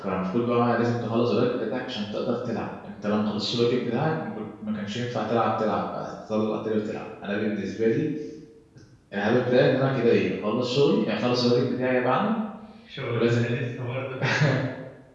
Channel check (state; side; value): identical; both; correlation 1.00